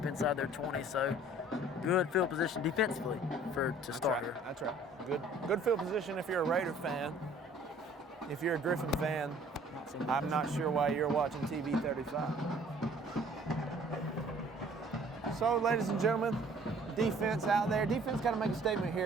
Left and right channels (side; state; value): both; normal; correlation 0.54